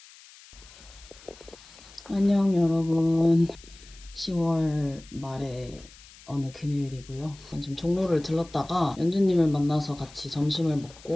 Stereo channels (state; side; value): noise; left; hiss, 22 dB below the sound